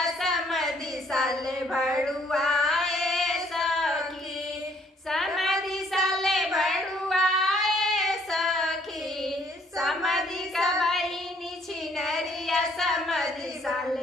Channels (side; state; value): both; normal; correlation 0.64